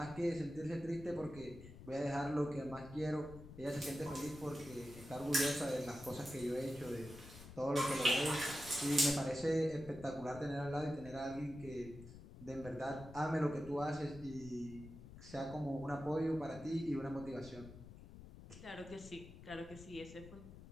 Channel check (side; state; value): left; noise; rumble, 15 dB below the sound